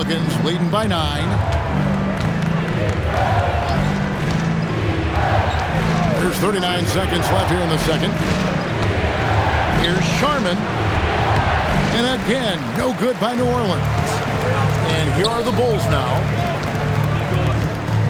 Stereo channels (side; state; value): both; identical; correlation 1.00